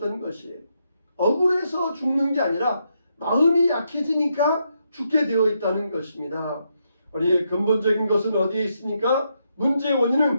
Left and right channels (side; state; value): both; inverted; correlation -0.80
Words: 것이에요. 억울해서 죽는 게 아니라 마음이 약해지니까 죽게 되어 있다는 것입니다. 우리 근본적인 것은 어디에 있습니까? 문제의